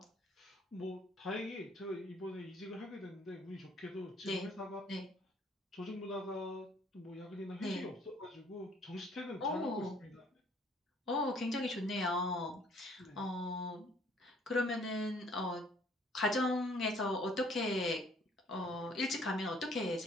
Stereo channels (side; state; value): both; normal; correlation 0.60